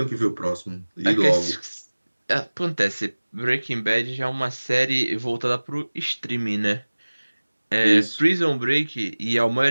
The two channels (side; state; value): both; inverted; correlation -1.00